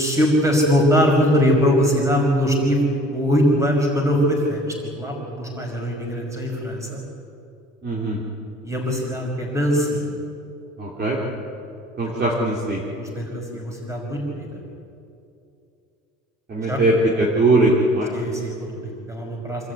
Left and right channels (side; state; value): both; normal; correlation 0.52